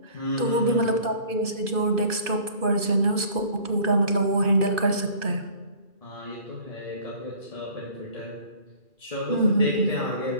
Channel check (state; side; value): late; left; 2.5 ms